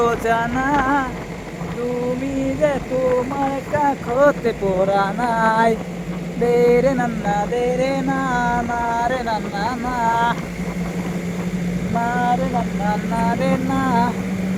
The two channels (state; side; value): identical; both; correlation 1.00